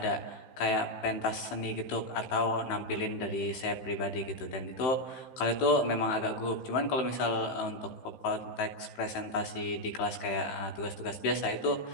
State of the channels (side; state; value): right; late; 16 ms